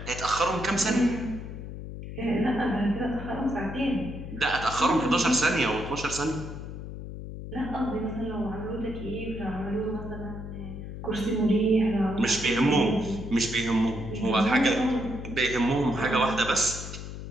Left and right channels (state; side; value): noise; left; hum, 9 dB below the sound